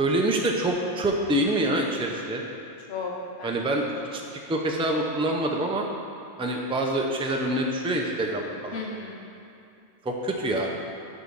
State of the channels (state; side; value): normal; both; correlation 0.24